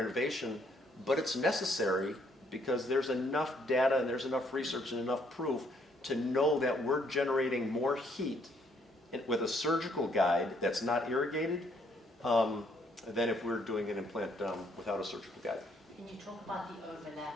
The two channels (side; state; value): both; normal; correlation 0.68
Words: but it's necessary because there's enough data and there's enough research and enough proof to know that we're generating more heat with a surgical guide that's not irrigated than if we're doing an implant without a surgical guide. Can you talk about the